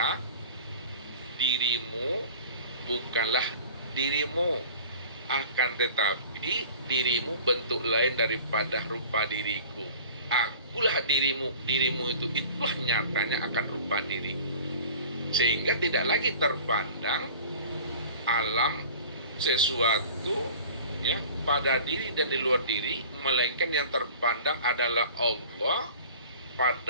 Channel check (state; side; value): inverted; both; correlation -0.43